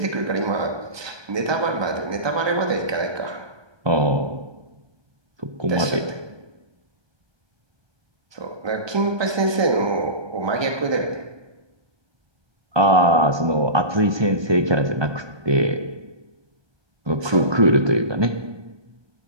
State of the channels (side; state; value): left; late; 1.2 ms